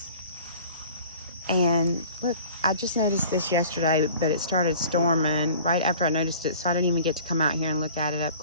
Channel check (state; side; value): inverted; both; correlation -0.46